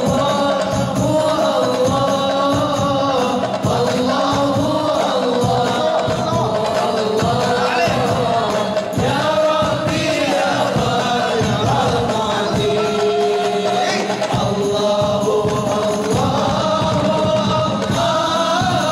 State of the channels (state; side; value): identical; both; correlation 1.00